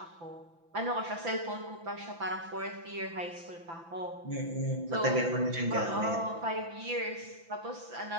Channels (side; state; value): left; late; 5.9 ms